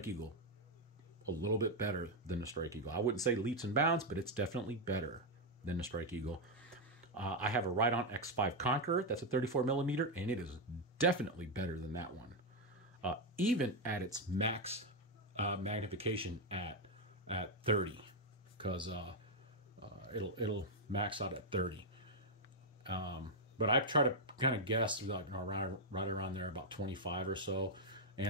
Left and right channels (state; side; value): normal; both; correlation 0.02